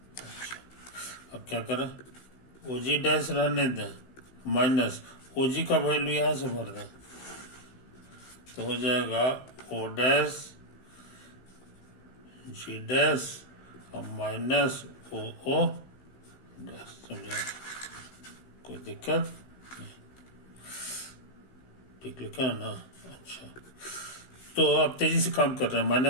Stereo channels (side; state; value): right; late; 16 ms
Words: अब क्या करें? ओ जी डैश रहने दें, माइनस ओ जी का वैल्यू यहाँ से भर दें, तो हो जाएगा ओ डैश जी डैश और माइनस ओ ओ डैश, समझे? कोई दिक्कत नहीं, ठीक लिखा है ना? अच्छा, तो अब तेजी से काम कर रहे हैं,